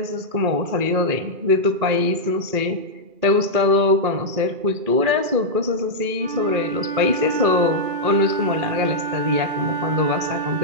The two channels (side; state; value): left; late; 2.4 ms